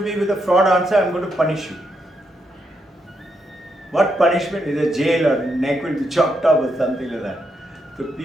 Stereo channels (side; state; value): both; normal; correlation 0.80